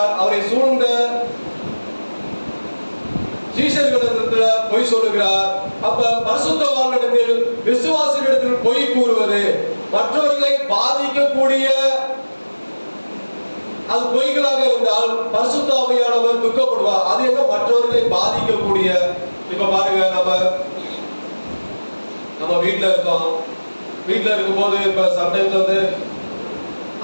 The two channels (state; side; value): inverted; both; correlation -1.00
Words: அவரை சூழ்ந்த சீஷர்களிடத்தில் பொய் சொல்லுகிறார். அப்ப பரிசுத்தவான்களிடத்தில் விசுவாசிகளிடத்தில் பொய் கூறுவது மற்றவர்களை பாதிக்கக்கூடிய அது பொய்களாக இருந்தால் பரிசுத்த ஆவியானவர் துக்கப்படுவார். அது என்ன மற்றவர்களை பாதிக்கக்கூடிய? இப்ப பாருங்க, நம்ம வீட்டுல இருக்கோம். வீட்டுல இருக்கும்போது இப்ப சம்டைம்ஸ் வந்து